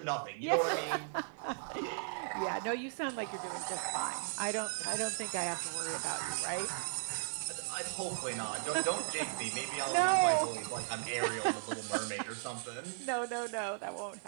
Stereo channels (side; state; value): left; silent; digital silence